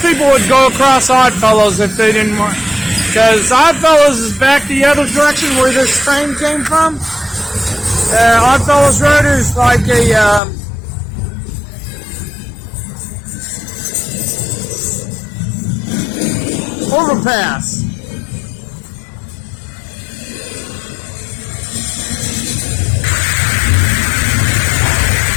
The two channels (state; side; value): drops out; right; at 10.4 s